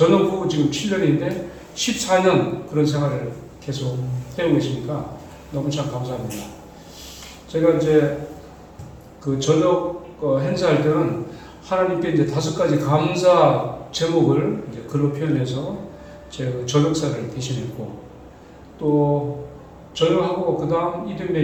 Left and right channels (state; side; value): identical; both; correlation 1.00